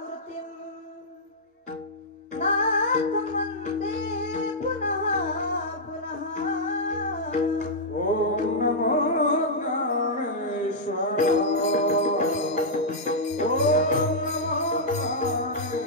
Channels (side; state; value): both; normal; correlation -0.08